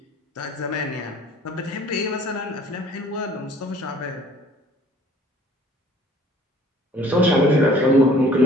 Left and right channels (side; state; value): both; normal; correlation 0.53